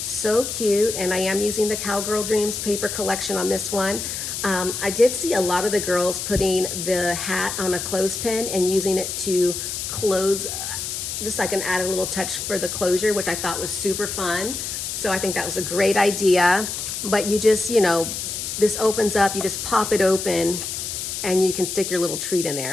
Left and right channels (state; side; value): noise; left; hiss, 5 dB below the sound